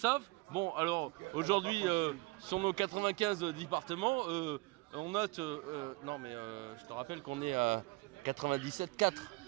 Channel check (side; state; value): left; quieter; 23.5 dB